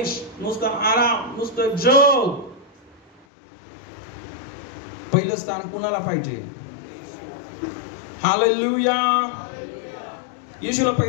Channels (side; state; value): right; drops out; at 3.2 s